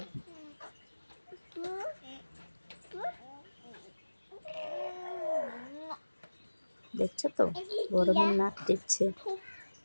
দেখছো তো গরমের নাক টিপছে।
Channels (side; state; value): both; inverted; correlation -1.00